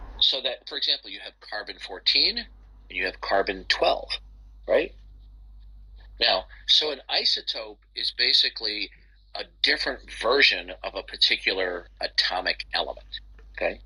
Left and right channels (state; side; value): identical; both; correlation 1.00